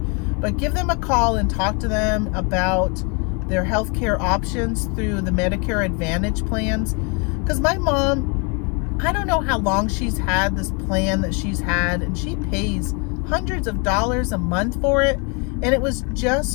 But give them a call and talk to them about their healthcare options through the Medicare Advantage plans. Because my mom, I don't know how long she's had this plan that she's had, and she pays hundreds of dollars a month for it, and it was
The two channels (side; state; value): right; quieter; 33.6 dB